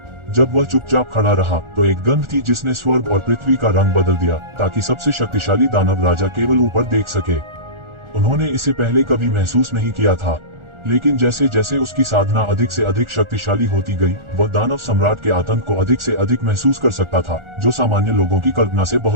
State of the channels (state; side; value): late; left; 1.4 ms